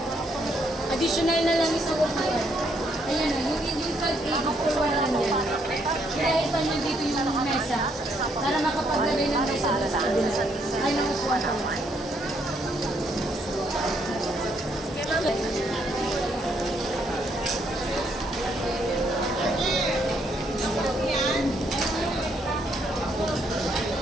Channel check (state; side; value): normal; both; correlation 0.72